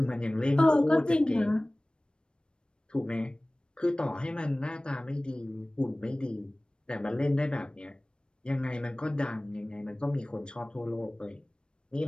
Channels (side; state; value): right; late; 0.053 ms